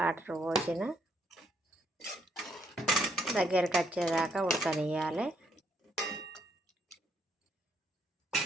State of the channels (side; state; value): both; normal; correlation 0.72